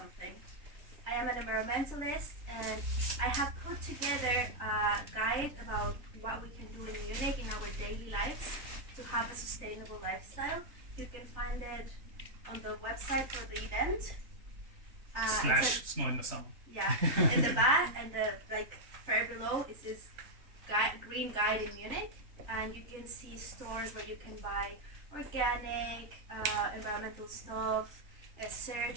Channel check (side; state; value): left; late; 3.2 ms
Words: I am an environmentalist, and I have put together a guide about what we can do in Munich in our daily lives to have a sustainable lifestyle. You can find it on the website for the event. / snow in the summer. Yeah, in the back and the far below it says green guide in Munich, and you can see stores where you can buy organic, environmental stuff.